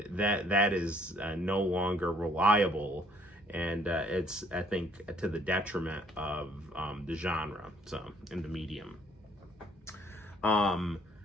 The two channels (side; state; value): both; normal; correlation 0.62